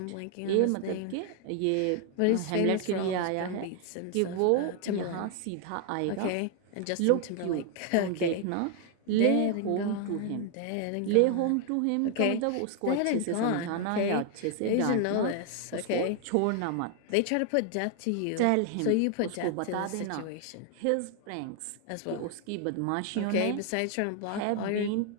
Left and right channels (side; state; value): both; different; correlation 0.00